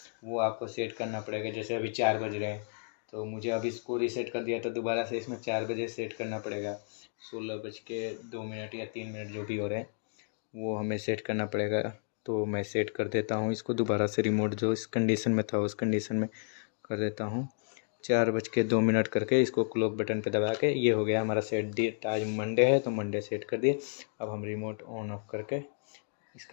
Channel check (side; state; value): right; silent; digital silence